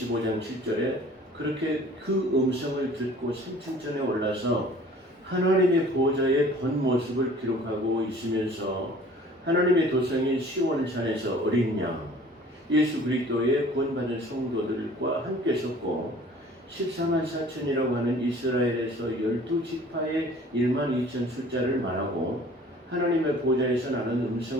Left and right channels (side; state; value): both; normal; correlation 0.49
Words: 7절에 그렇게 그 음성을 듣고 산천전에 올라서 하나님의 보좌의 본 모습을 기록하고 있으면서 하나님의 도성인 시온산에서 어린 양 예수 그리스도의 구원받은 성도들과 함께 섰고 14만 4천이라고 하는 이스라엘에서 12지파의 1만 2천 숫자를 말하고 하나님의 보좌에서 나는